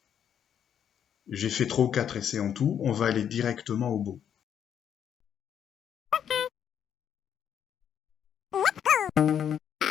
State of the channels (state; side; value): quieter; right; 8.9 dB